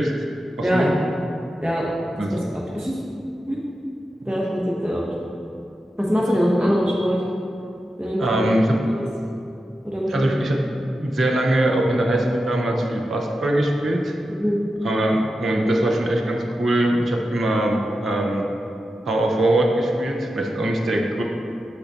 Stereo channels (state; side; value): normal; both; correlation 0.90